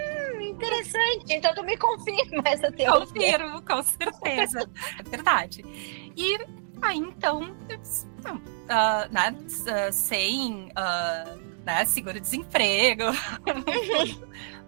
interessante, então tu me confirma essa teoria. Confirmo, com certeza, é verdade. E aí, então, sem seguro-desemprego,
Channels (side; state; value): left; silent; digital silence